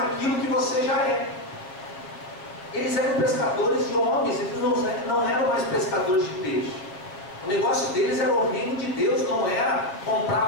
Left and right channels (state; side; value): late; right; 7.1 ms